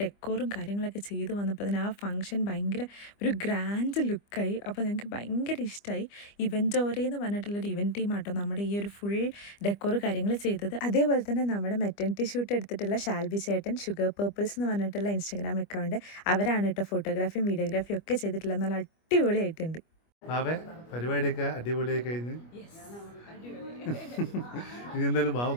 ഡെക്കോറും കാര്യങ്ങളൊക്കെ ചെയ്ത് വന്നപ്പോൾ തന്നെ ആ ഫംഗ്ഷൻ ഭയങ്കര ഒരു ഗ്രാൻഡ് ലുക്കായി. അപ്പോൾ ഞങ്ങൾക്ക് ഭയങ്കര ഇഷ്ടമായി. ഇവൻറ്റോറെ എന്ന് പറഞ്ഞിട്ടുള്ളൊരു ഇവൻറ്റ് ടീമാട്ടോ നമ്മുടെ ഈ ഒരു ഫുൾ ഡെക്കോർ കാര്യങ്ങൾ ചെയ്തത്. അതേപോലെ തന്നെ നമ്മുടെ മെറ്റർണിറ്റി ഷൂട്ട് എടുത്തിട്ടുള്ള ഷാൽബി ചേട്ടൻ ഷുഗർ പേർപ്പിൾസ് എന്ന് പറഞ്ഞിട്ടുള്ള ഇൻസ്റ്റാഗ്രാം അക്കൗണ്ട്, അവരാണ് കേട്ടോ ഫോട്ടോഗ്രാഫിയും വീഡിയോഗ്രാഫിയും ഒക്കെ ചെയ്തിട്ടുള്ളത്. നല്ല അടിപൊളിയായിട്ടുണ്ട്. ബാവേ, പരിപാടിയൊക്കെ അടിപൊളിയായി കഴിഞ്ഞ് ഇനി എന്തായാലും ബാവ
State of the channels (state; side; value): late; right; 25 ms